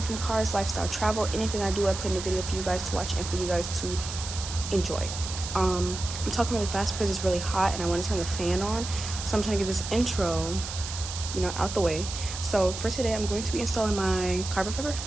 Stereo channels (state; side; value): noise; right; hiss, 8 dB below the sound